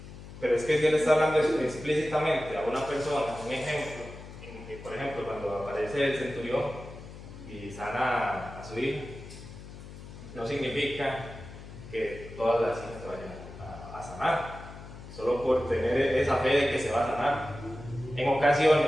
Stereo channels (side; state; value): left; noise; hum, 14 dB below the sound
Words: Pero es que si él está hablando explícitamente a una persona, un ejemplo, en que, por ejemplo, cuando aparece el centurión y sana a su hijo, no significa que todas las hijas se vayan a sanar, solo por tener esa fe de que se va a sanar. En